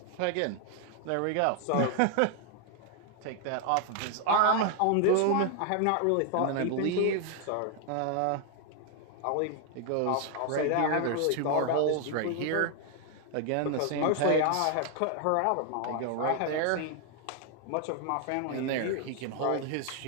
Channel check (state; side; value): different; both; correlation 0.00